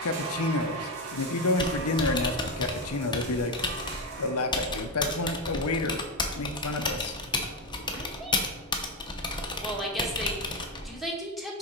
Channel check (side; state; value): both; normal; correlation 0.10